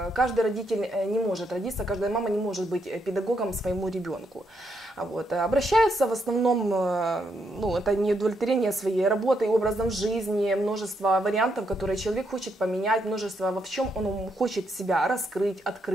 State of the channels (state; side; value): normal; both; correlation 0.78